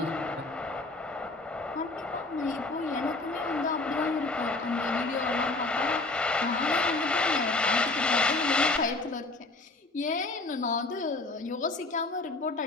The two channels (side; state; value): right; quieter; 3.2 dB